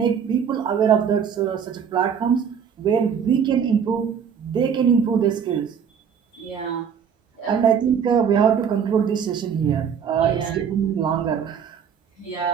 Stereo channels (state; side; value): quieter; left; 7.4 dB